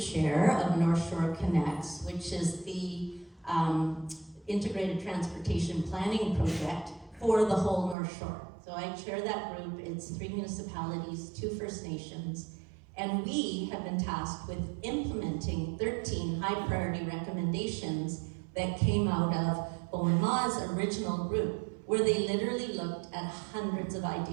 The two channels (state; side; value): drops out; left; at 8.0 s